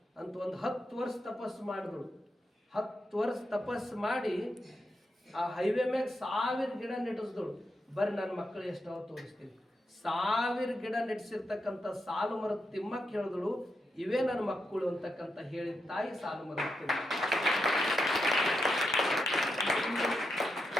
ಅಂತ ಒಂದು 10 ವರ್ಷ ತಪಸ್ಸು ಮಾಡಿದ್ರು. 10 ವರ್ಷ ತಪಸ್ಸು ಮಾಡಿ ಆ ಹೈವೇ ಮ್ಯಾಗ 1000 ಗಿಡ ನೆಟ್ಟಿಸಿದಳು. ಬರ್ರಿ ನನ್ನ ಮಕ್ಕಳು ಎಷ್ಟವ ತೋರಿಸ್ತೀನಿ. 1000 ಗಿಡ ನೆಟ್ಟಿಸಿರ್ತಕ್ಕಂಥ ಸಾಲು ಮರದ ತಿಮ್ಮಕ್ಕೆ ಹೇಳಿದಳು, ಇವೇ ನನ್ನ ಮಕ್ಕಳು ಅಂತಕ್ಕಂಥ ಹೇಳಿದ ತಾಯಿ ಸಾಲು ಮರದ ತಿಮ್ಮ.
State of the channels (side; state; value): both; normal; correlation 0.85